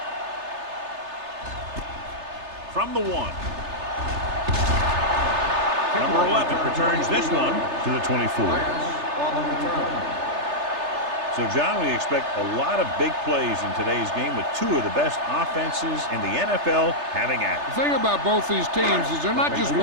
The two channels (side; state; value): left; late; 3.3 ms